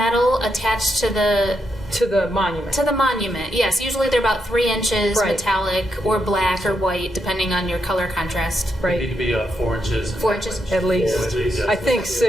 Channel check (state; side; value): normal; both; correlation 0.81